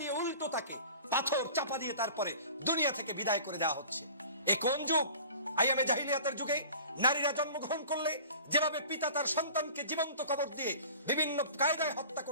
উল্টো তাকে পাথর চাপা দিয়ে তারপরে দুনিয়া থেকে বিদায় করে দেওয়া হচ্ছে। এ কোন যুগ? আইয়ামে জাহিলিয়াতের যুগে নারীরা জন্মগ্রহণ করলে যেভাবে পিতা তার সন্তানকে জীবন্ত কবর দিয়ে বিভিন্ন কায়দায় হত্যা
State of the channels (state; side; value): inverted; both; correlation -0.43